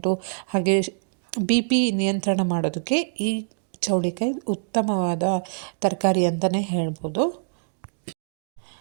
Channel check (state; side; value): silent; left; digital silence